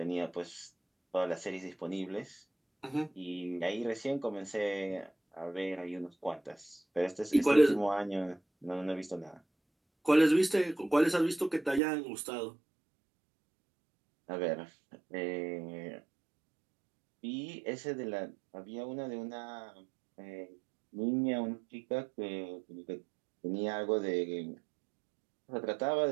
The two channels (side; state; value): left; drops out; at 11.8 s